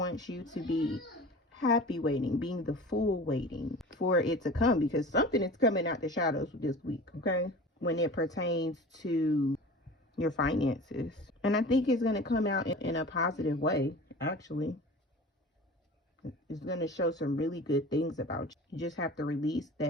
you to be happy waiting, being the Fool waiting for it to come, because something is coming out the shadows this week, okay? When it pertains to your finances. And I think it's going to come out in a positive way, actually. It's going to show some really good things about you. You just have to release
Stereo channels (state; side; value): normal; both; correlation 0.38